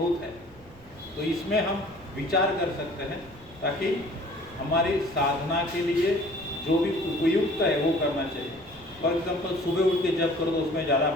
है। तो इसमें हम विचार कर सकते हैं, ताकि हमारी साधना के लिए जो भी उपयुक्त है वो करना चाहिए। फॉर एग्जाम्पल सुबह उठ के जप करो तो उसमें ज़्यादा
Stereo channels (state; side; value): noise; right; rumble, 24 dB below the sound